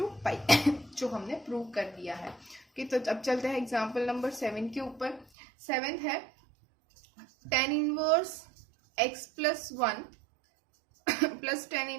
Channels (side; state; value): left; drops out; at 5.2 s